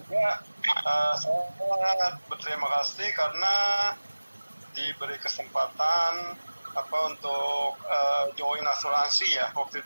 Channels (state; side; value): inverted; both; correlation -1.00